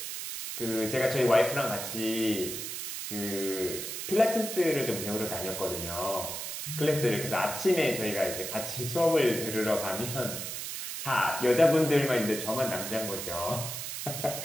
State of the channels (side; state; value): right; noise; hiss, 6 dB below the sound